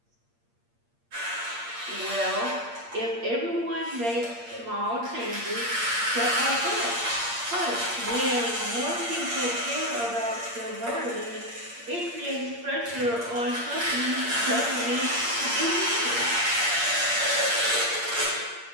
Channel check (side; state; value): left; late; 8.6 ms